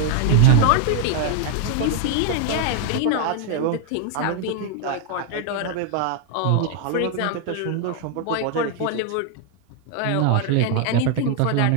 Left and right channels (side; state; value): both; different; correlation 0.00